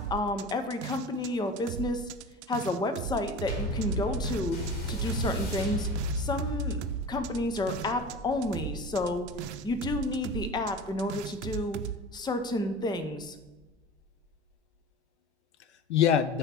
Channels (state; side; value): normal; both; correlation 0.35